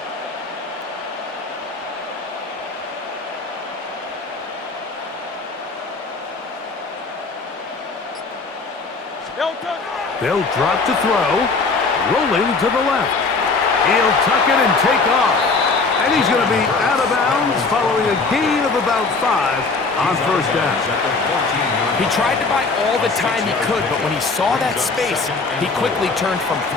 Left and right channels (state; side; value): quieter; right; 4.1 dB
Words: They'll drop to throw. Rolling to the left. He'll tuck it and take off. And he's going to be out of bounds following a gain of about 5 on 1st down. He tried to buy all the time he could, but when he saw that space, he quickly turned from